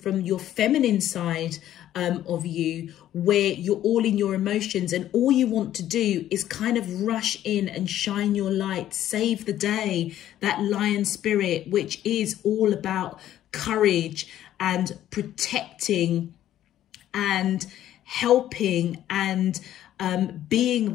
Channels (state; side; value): quieter; right; 12.3 dB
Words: your feminine side of you, where you're all in your emotions and all you want to do is kind of rush in and shine your light, save the day, that lion spirit, which is all about courage and protecting and helping and being